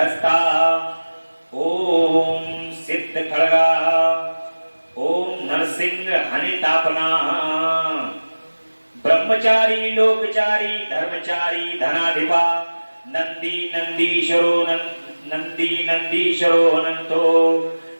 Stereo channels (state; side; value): inverted; both; correlation -1.00